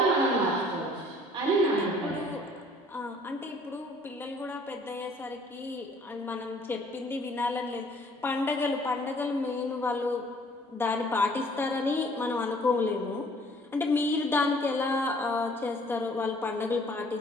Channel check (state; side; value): normal; both; correlation 0.57